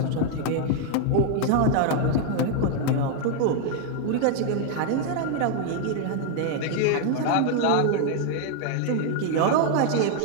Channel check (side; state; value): both; different; correlation 0.00